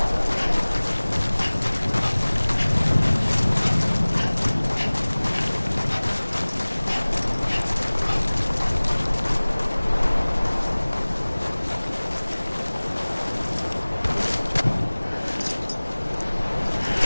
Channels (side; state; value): both; inverted; correlation -1.00